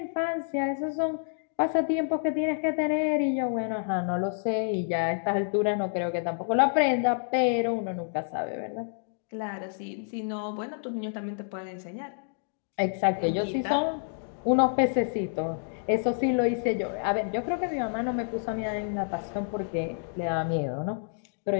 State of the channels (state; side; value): silent; right; digital silence